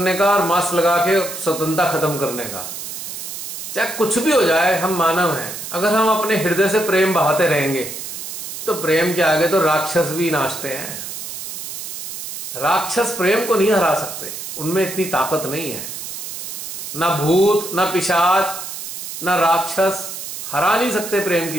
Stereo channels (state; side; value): noise; right; hiss, 8 dB below the sound